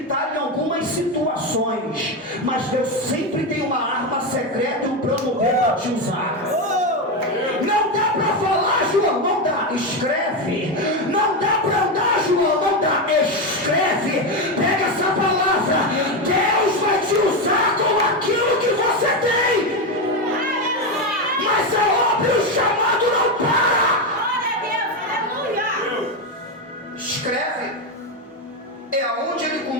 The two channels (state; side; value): normal; both; correlation 0.11